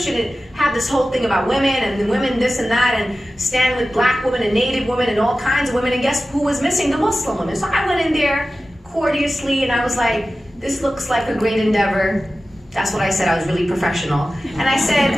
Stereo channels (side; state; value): both; normal; correlation 0.94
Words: it had this whole thing about women and women this and that, and stand with black women and native women and all kinds of women. And guess who was missing? The Muslim women. So I went in there courteously and I was like, this looks like a great endeavor. That's what I said. I was really professional. And I